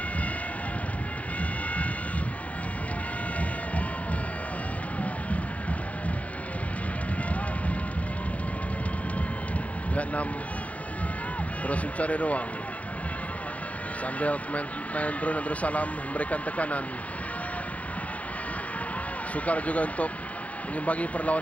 Vietnam terus mencari ruang sambil pemain Brunei Darussalam memberikan tekanan. Sukar juga untuk mengimbangi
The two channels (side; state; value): right; late; 0.067 ms